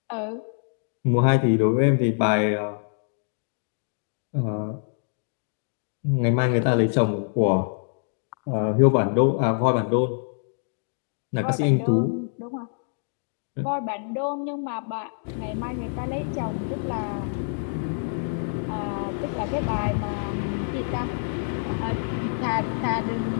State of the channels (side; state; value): right; silent; digital silence